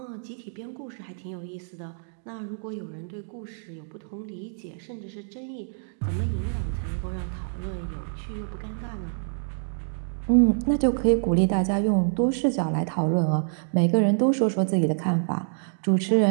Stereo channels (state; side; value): silent; left; digital silence